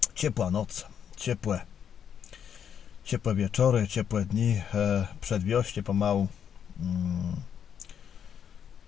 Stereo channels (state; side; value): quieter; right; 8.3 dB